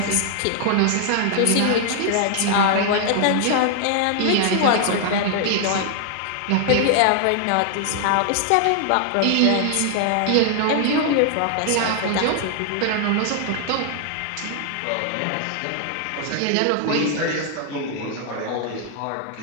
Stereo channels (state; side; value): different; both; correlation 0.00